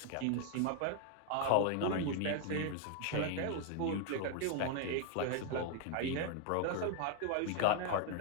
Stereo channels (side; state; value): both; different; correlation 0.00